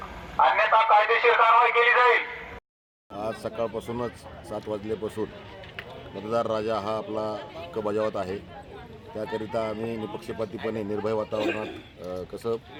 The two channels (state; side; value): identical; both; correlation 1.00